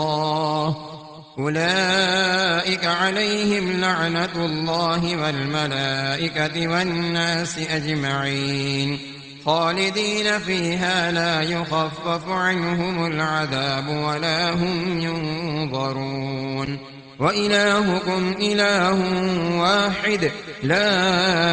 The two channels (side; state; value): both; identical; correlation 1.00